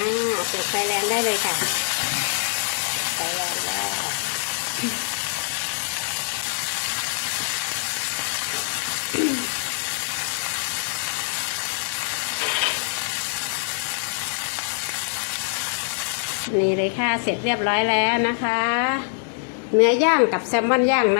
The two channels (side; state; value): right; silent; digital silence